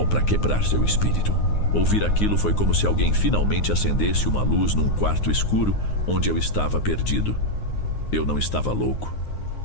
para quebrar seu espírito. Ouvir aquilo foi como se alguém finalmente acendesse uma luz num quarto escuro onde eu estava perdido. Eu não estava louco.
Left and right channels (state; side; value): late; right; 9.6 ms